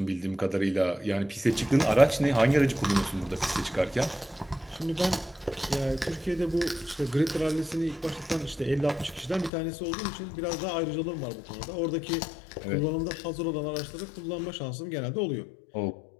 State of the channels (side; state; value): right; drops out; at 9.5 s